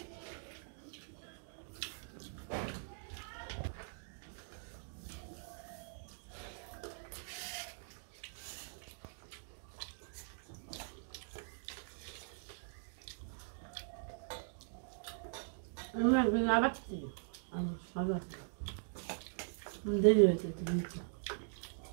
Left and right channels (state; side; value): silent; left; digital silence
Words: আবার দেরি হয়েছে